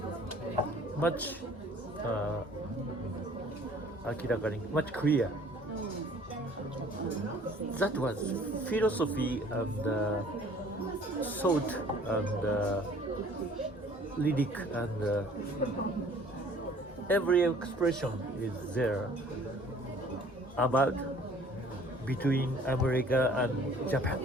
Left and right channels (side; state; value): both; normal; correlation 0.54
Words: much 明らかに much clear. That was philosophy and thought and lyric and every expression is there about between America and Japan,